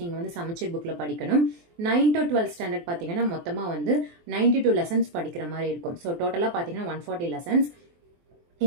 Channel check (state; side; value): late; left; 23 ms